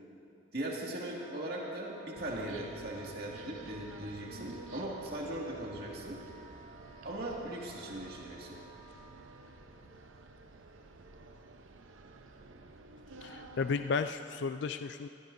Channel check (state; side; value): normal; both; correlation 0.22